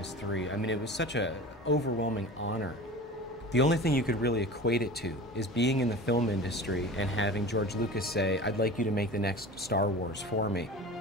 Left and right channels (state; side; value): normal; both; correlation 0.36